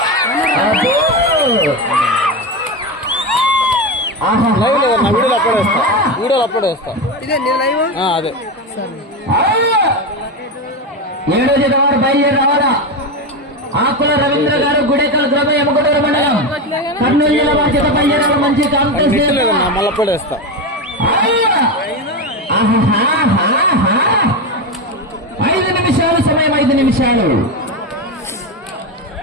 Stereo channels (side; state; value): both; normal; correlation 0.16